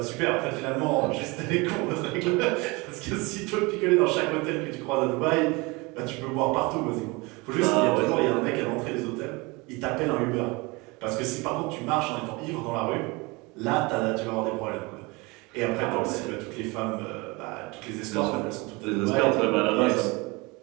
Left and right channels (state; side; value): quieter; left; 25.5 dB